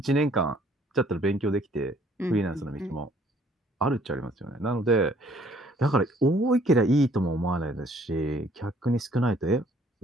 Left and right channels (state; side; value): normal; both; correlation 0.61